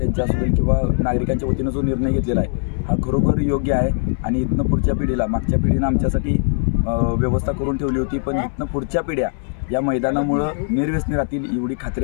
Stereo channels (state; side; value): silent; right; 64 dB below the other